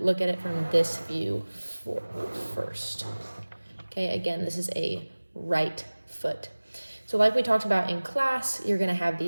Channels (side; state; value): both; inverted; correlation -1.00